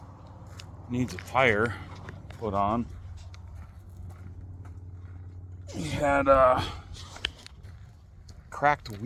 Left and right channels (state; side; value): identical; both; correlation 1.00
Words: needs a tire put on. He had a cracked